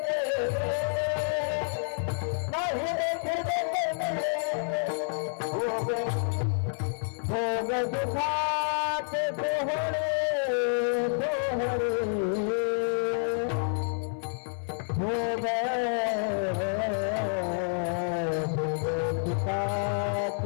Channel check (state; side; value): silent; right; 59 dB below the other